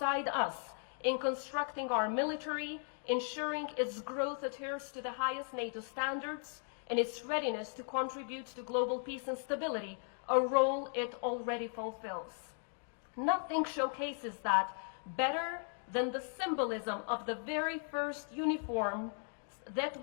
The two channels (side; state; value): right; silent; 53 dB below the other